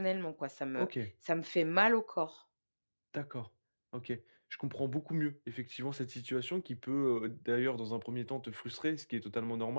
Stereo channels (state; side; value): inverted; both; correlation -1.00